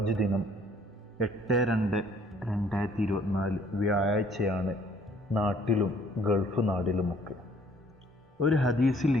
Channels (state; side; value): normal; both; correlation 0.60